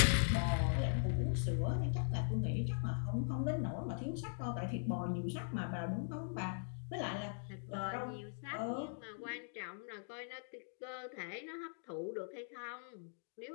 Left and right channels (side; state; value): right; silent; digital silence